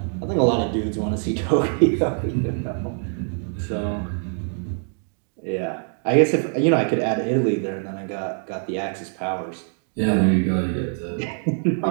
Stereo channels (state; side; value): silent; left; 57 dB below the other